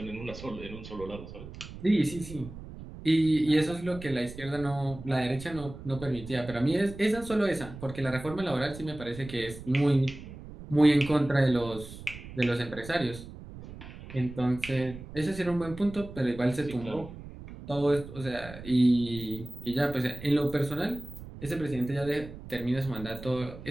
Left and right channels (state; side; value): noise; right; rumble, 14 dB below the sound